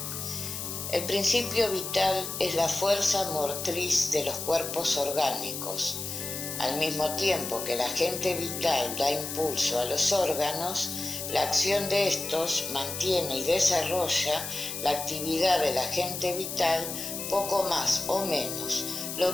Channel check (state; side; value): noise; left; hiss, 6 dB below the sound